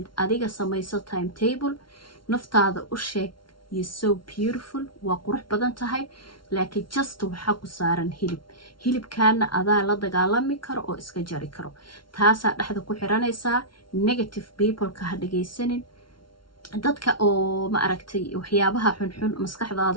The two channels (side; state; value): right; late; 0.73 ms